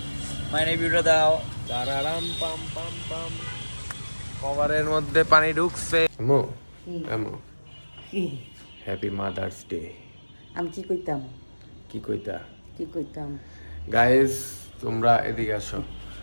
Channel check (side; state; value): both; inverted; correlation -1.00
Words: মাইনে ভিডিও দাও তারারাম পাম পাম পাম। কভারের মধ্যে পানি ঢুকছে। আমু আমু হ্যাপি মাদার্স ডে। আমি কি কইতাম কি কইতা? কি কইতাম গাইস তোমরা এদিকে আসো।